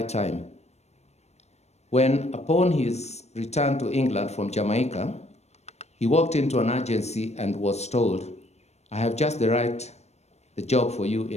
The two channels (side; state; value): right; late; 0.32 ms